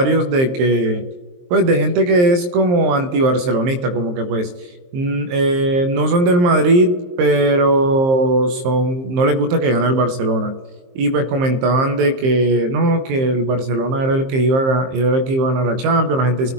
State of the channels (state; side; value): late; left; 23 ms